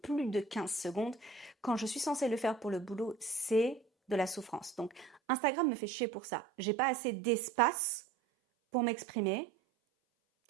plus de 15 secondes, quand je suis censée le faire pour le boulot, c'est de la souffrance. Donc, Instagram me fait chier pour ça. J'ai pas assez d'espace pour m'exprimer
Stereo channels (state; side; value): drops out; left; at 5.2 s